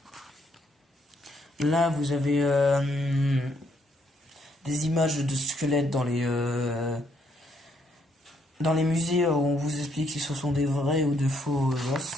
Là, vous avez des images de squelettes dans les musées où on vous explique si ce sont des vrais ou de faux os.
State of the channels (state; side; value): normal; both; correlation 0.72